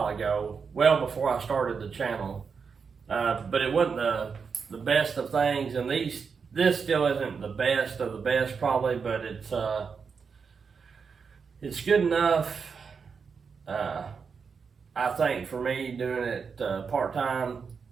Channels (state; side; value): quieter; left; 5.7 dB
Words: ago, well before I started the channel. But it wasn't the best of things, and this still isn't the best of the best probably, but it's good enough, I think, for me doing it part-time,